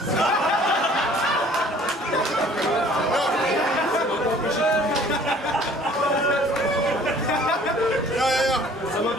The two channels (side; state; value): both; normal; correlation 0.53